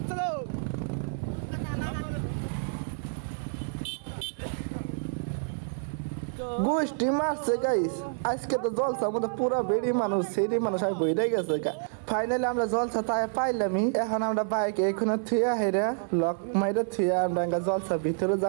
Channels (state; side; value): silent; left; 56 dB below the other